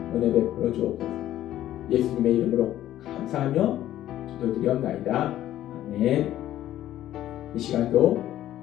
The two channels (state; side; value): quieter; right; 13.0 dB